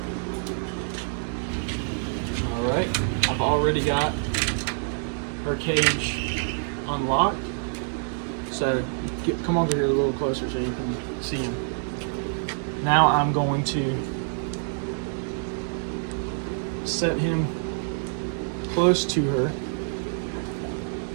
All right, I've already got her cage unlocked. So come over here a little closer so you can see him. Now I'm going to set him close to her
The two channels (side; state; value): left; silent; digital silence